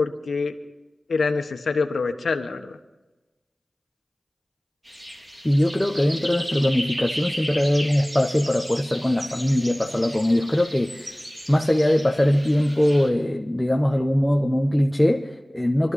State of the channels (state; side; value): normal; both; correlation 0.98